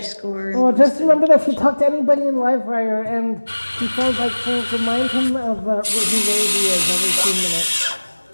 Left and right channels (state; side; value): inverted; both; correlation -1.00